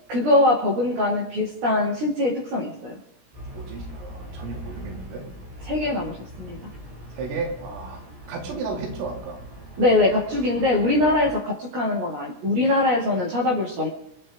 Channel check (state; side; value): late; left; 17 ms